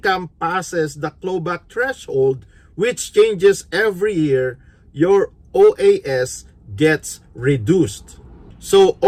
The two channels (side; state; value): both; identical; correlation 1.00